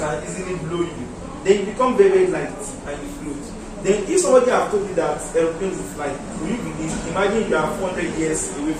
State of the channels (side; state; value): both; identical; correlation 1.00